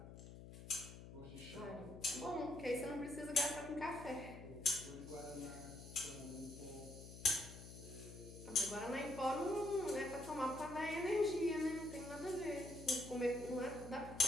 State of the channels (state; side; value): noise; left; hum, 13 dB below the sound